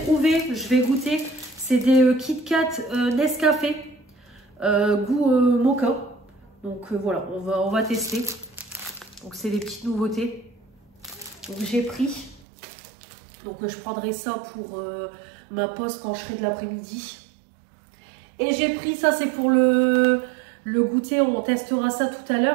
je vais goûter, c'est des Kit Kat Nescafé goût mocha. Donc voilà, on va tester. Donc c'est des petites nouveautés. Donc j'ai pris. Donc je prendrai ça pour ma pause quand je serai de l'après-midi. Et j'ai pris ça, c'est pour le goûter, on testera ça tout à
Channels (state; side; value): drops out; left; at 12.4 s